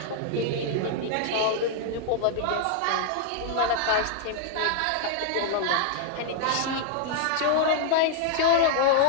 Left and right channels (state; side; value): different; both; correlation -0.01